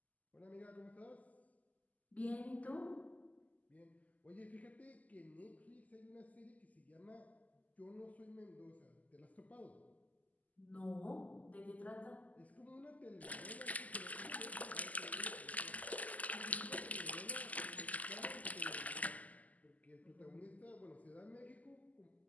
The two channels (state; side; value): late; right; 0.075 ms